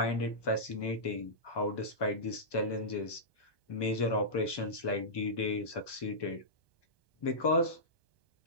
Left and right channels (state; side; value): late; right; 1.2 ms